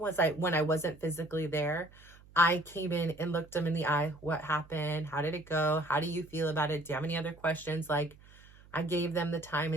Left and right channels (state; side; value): noise; right; hum, 24 dB below the sound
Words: I wasn't physically there, I came in and looked them in the eye. What happened? How did it go? How do you feel about it? Do you have any other questions? Like, I gave them the time